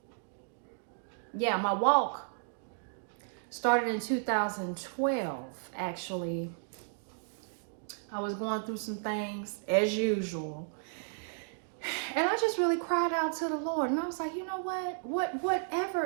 yeah, my walk started in 2012, actually. I was going through some things as usual. And I just really cried out to the Lord. And I was like, you know what?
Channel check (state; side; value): silent; left; digital silence